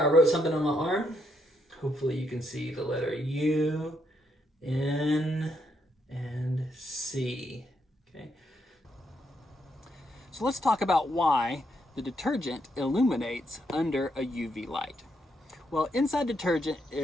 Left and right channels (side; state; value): both; normal; correlation 0.77